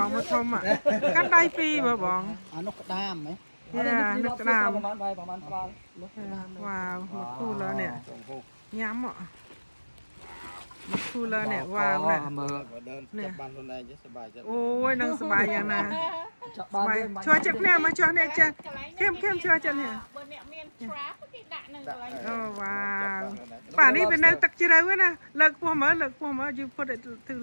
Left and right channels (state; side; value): inverted; both; correlation -1.00